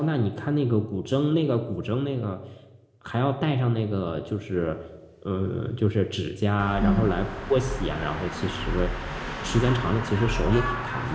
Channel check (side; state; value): both; identical; correlation 1.00